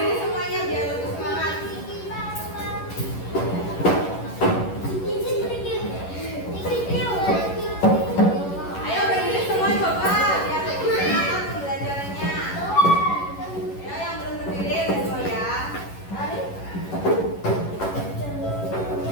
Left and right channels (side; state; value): right; late; 11 ms